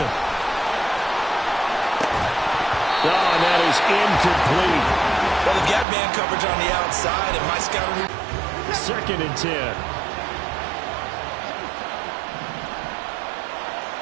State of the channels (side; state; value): left; drops out; at 5.9 s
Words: Oh, and that is incomplete. Well, they've got man coverage on the outside, and my scouting... 2nd and 10.